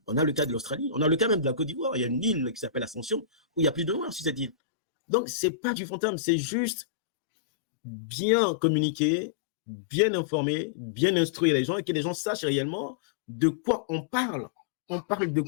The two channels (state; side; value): drops out; right; at 4.5 s